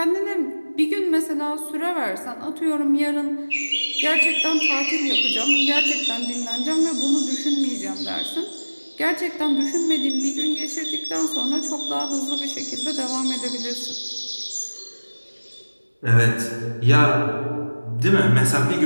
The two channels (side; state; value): both; inverted; correlation -1.00